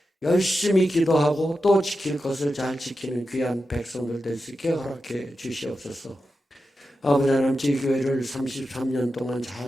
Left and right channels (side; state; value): both; normal; correlation 0.90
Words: 열심히 기도하고 또 지킬 것을 잘 지키는 귀한 백성들 될 수 있게 허락해 주시옵소서. 아버지 하나님, 저희 교회를 33년 동안